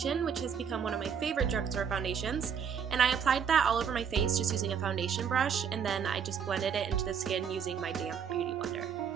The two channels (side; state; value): left; quieter; 7.2 dB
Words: which has become one of my favorite drugstore foundations, and I applied that all over my face just using a foundation brush, and then I just blended it into the skin using my damp beauty blender.